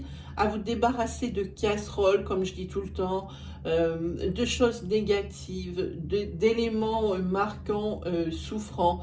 à vous débarrasser de casseroles, comme je dis tout le temps, de choses négatives, d'éléments marquants, souffrants.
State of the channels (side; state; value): both; identical; correlation 1.00